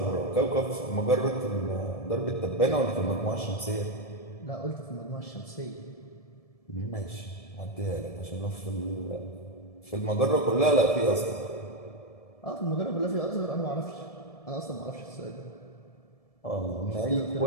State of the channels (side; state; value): right; late; 1.7 ms